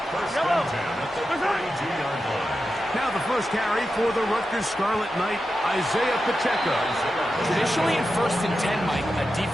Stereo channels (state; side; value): normal; both; correlation 0.90